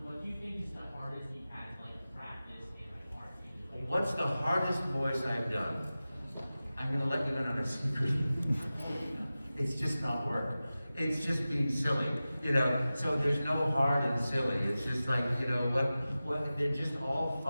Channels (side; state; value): both; inverted; correlation -0.95